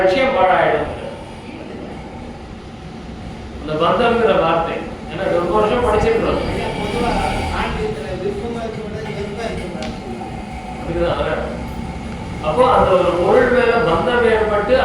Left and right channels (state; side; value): identical; both; correlation 1.00